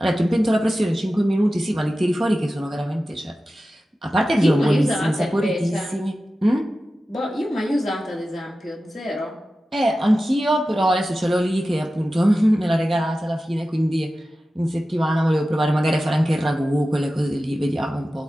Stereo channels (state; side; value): normal; both; correlation 0.94